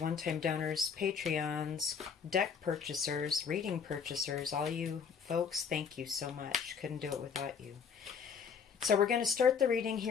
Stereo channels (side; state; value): right; quieter; 6.4 dB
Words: donors, Patreons, deck purchasers, reading purchasers, all you folks, thank you so much. Couldn't do it without you. So we're going to start the reading